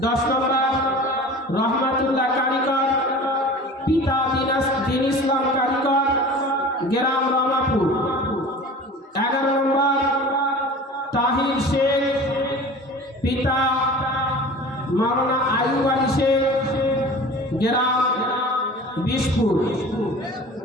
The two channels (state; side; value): normal; both; correlation 0.40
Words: 10 নম্বর রহমাতুল্লাহ কারিগর, পিতা দিন ইসলাম কারিগর, গ্রাম রামাপুর। 11 নম্বর তাহির শেখ, পিতা মাওলানা আইয়ুব আলী শেখ, গ্রাম বিশপুর।